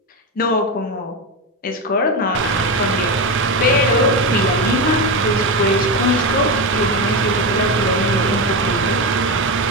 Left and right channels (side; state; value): both; normal; correlation 0.15